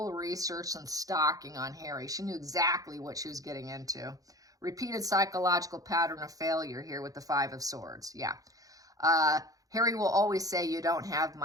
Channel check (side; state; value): left; late; 0.17 ms